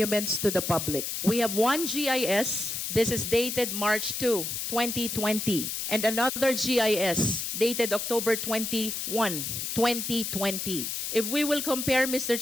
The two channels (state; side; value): noise; left; hiss, 3 dB below the sound